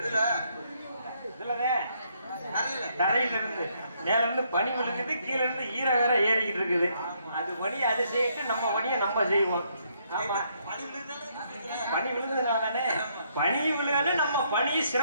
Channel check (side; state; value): both; inverted; correlation -0.72